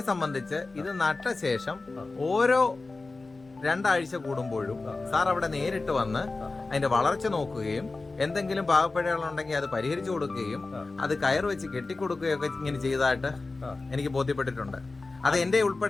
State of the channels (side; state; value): right; quieter; 3.5 dB